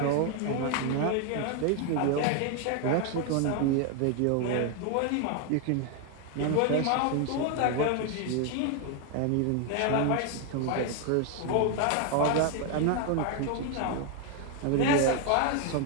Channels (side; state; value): both; different; correlation 0.01